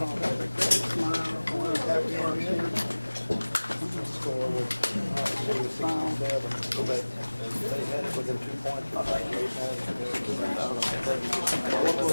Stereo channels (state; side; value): inverted; both; correlation -1.00